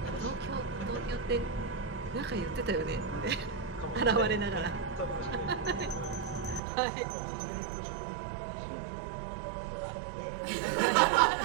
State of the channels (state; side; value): drops out; left; at 6.6 s